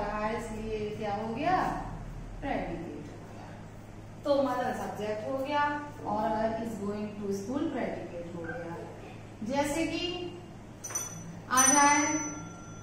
है, इसलिए क्या हो गया? प्रेडिकेट हो गया। तो मदन सब्जेक्ट हो गया और is going to school predicate हो गया। जैसे कि आ जाए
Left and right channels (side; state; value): both; identical; correlation 1.00